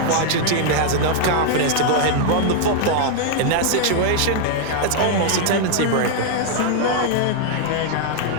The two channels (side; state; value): both; different; correlation 0.00